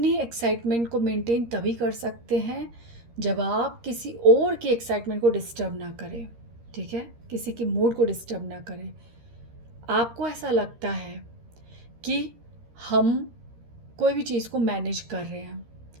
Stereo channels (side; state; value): left; late; 13 ms